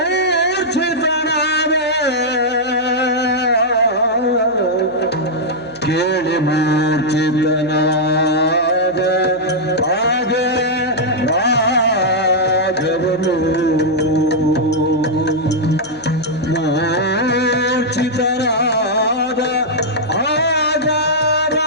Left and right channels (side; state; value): right; noise; hum, 26 dB below the sound